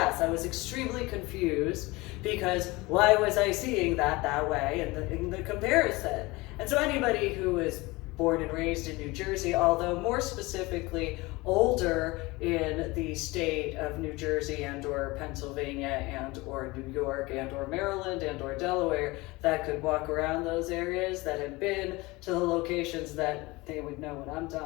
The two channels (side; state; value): right; quieter; 22.5 dB